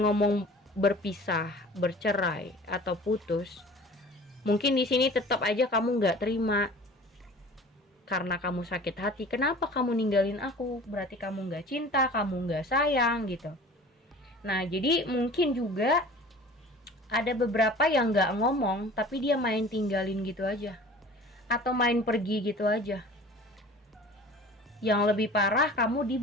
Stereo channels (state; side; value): normal; both; correlation 0.43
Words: berpisah, bercerai, atau putus, mungkin di sini tetap aja kamu nggak terima. Karena kamu sakit hati, kenapa kamu ninggalin aku? Berarti kamu nggak cinta, kamu nggak sayang gitu. Nah, jadi mungkin juga ada beberapa yang nggak ngomong, tapi dia main tinggalin gitu aja, atau main pergi gitu aja. Yang lebih parah, kamu